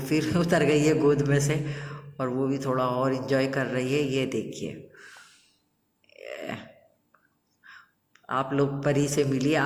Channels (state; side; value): identical; both; correlation 1.00